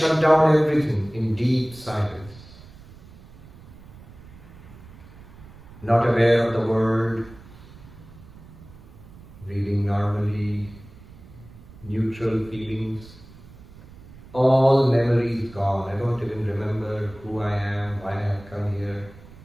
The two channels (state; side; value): noise; right; rumble, 20 dB below the sound